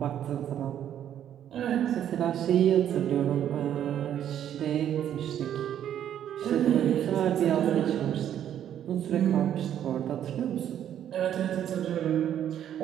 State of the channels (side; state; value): left; quieter; 10.3 dB